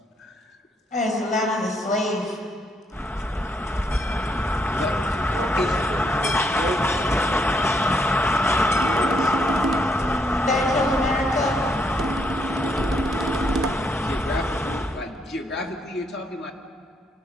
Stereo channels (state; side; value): normal; both; correlation 0.74